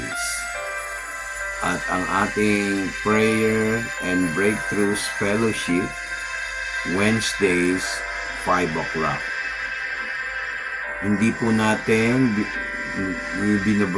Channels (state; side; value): identical; both; correlation 1.00